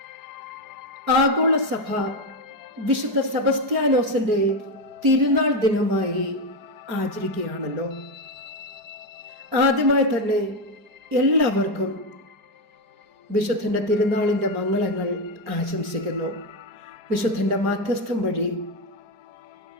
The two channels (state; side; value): late; left; 4.8 ms